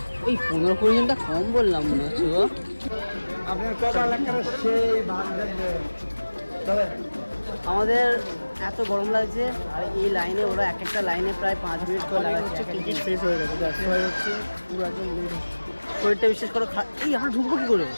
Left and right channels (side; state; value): both; inverted; correlation -1.00